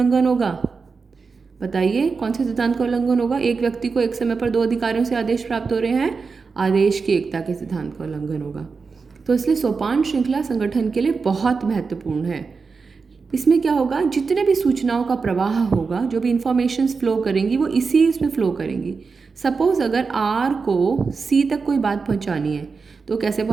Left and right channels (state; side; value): quieter; left; 4.8 dB